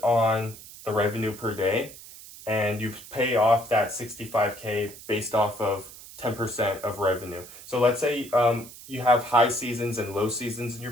on the revenue per day, and you pay off that 65K based off of 10% of revenue. So let's say you have high seasons and low seasons in your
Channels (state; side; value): noise; right; hiss, 17 dB below the sound